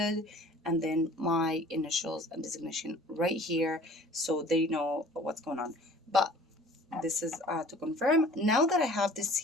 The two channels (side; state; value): both; normal; correlation 0.49